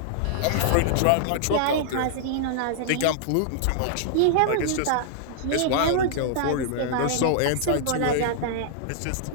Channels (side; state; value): both; different; correlation -0.01